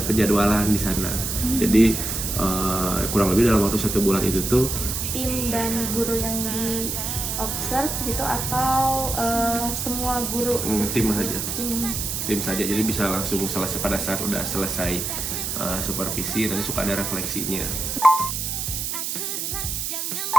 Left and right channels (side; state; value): right; noise; hiss, 3 dB below the sound